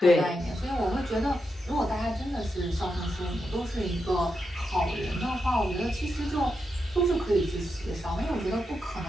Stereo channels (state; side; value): normal; both; correlation 0.85